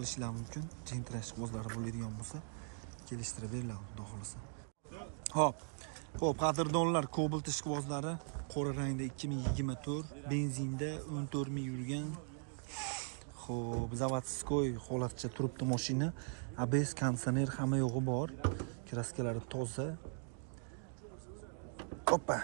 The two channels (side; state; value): left; silent; 51 dB below the other